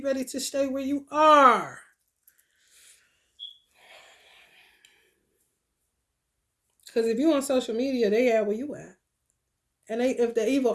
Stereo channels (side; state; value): both; identical; correlation 1.00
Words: ready to stay where you are. Because if you on social media, they at where you at. And they, if the